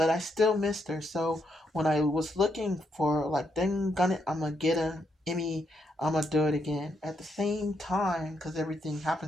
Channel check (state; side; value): normal; both; correlation 0.78